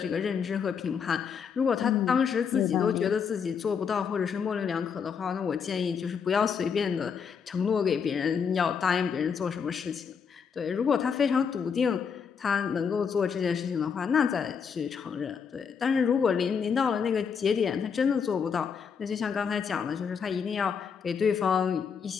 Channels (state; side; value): quieter; right; 6.5 dB